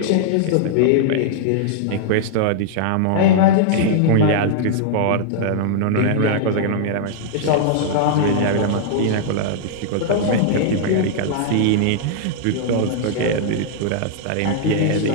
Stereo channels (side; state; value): both; different; correlation -0.01